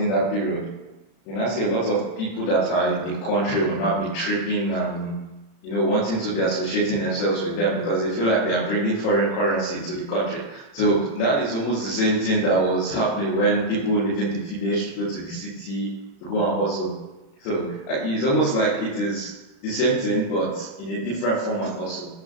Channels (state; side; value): late; right; 36 ms